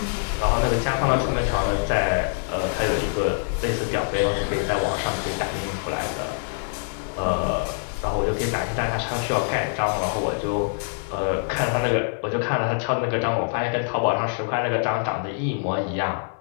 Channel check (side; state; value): right; silent; 56 dB below the other